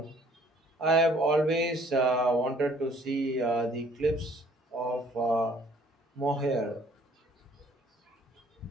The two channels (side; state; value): both; normal; correlation 0.59